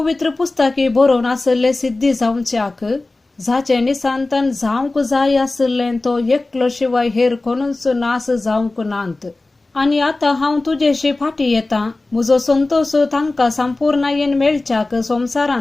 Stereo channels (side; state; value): right; quieter; 3.1 dB